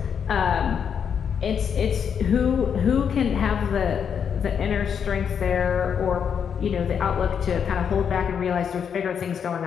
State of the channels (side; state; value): right; quieter; 7.4 dB